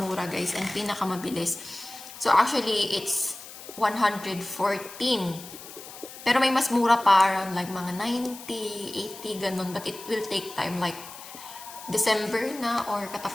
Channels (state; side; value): noise; left; hiss, 15 dB below the sound